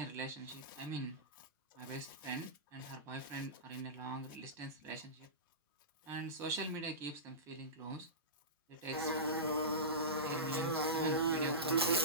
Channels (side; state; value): both; normal; correlation -0.20